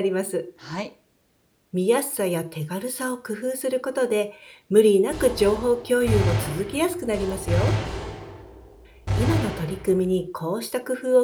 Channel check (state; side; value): identical; both; correlation 1.00